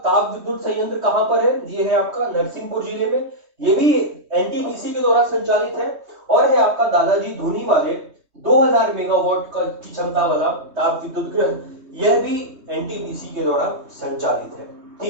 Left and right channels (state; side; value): late; left; 3.2 ms